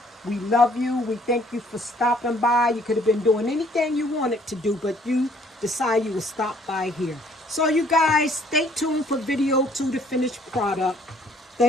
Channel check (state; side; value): normal; both; correlation 0.61